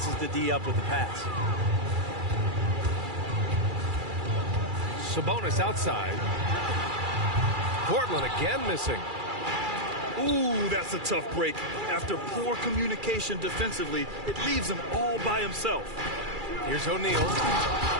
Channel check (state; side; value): late; left; 2.3 ms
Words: the D up with the pass. Sabonis outside. Portland again missing. Ooh, that's a tough break. After poor communication defensively, it leaves him all by himself. Here's O'Neal,